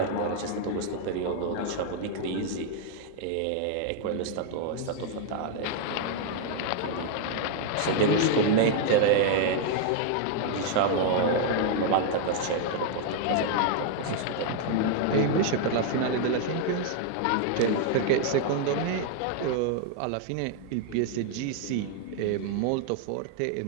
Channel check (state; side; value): different; both; correlation 0.00